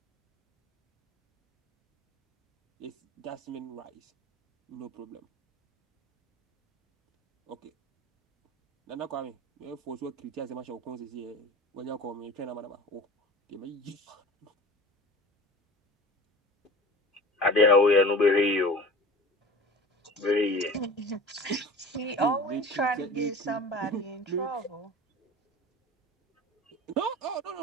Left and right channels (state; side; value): normal; both; correlation 0.37